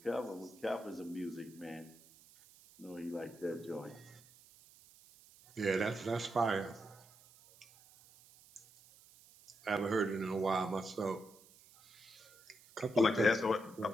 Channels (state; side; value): noise; right; hiss, 24 dB below the sound